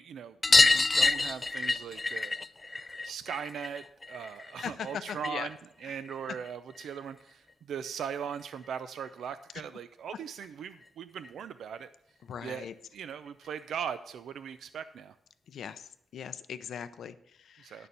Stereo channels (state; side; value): normal; both; correlation 0.90